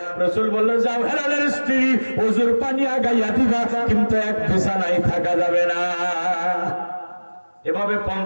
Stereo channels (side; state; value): both; inverted; correlation -1.00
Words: রাসূল বলল, যাও হেলালের স্ত্রী, ওযুর পানি আগাইয়া দিবা, কিন্তু এক বিছানায় থাকা যাবে না। এভাবে